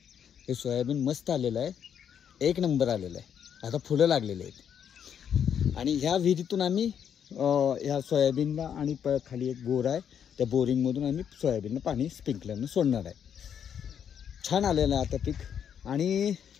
हे सोयाबीन मस्त आलेलं आहे. 1 नंबर आलेलं आहे. आता फुलं लागलेले आहेत. आणि ह्या विहिरीतून आम्ही ह्या सोयाबीनला आणि खाली एक बोर आहे, त्या बोरिंगमधून आम्ही सोयाबीनला पाणी स्प्रिंकलरनं सोडणार आहे. छान आलेलं आहे आता पीक. आणि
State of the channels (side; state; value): right; quieter; 8.4 dB